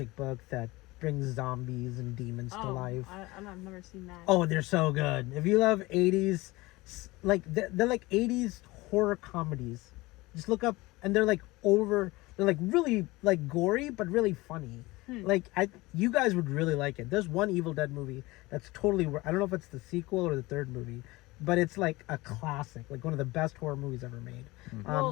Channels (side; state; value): right; quieter; 21.3 dB